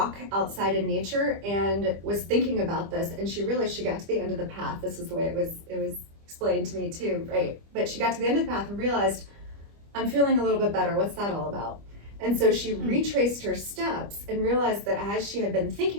outside in nature and was thinking about this, and she realized she got to the end of the path. This is the way it was explained to me too, right? But she got to the end of the path and realized, I'm feeling a little bit better. What's that all about? And so she retraced her steps and realized that as she had been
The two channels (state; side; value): late; left; 25 ms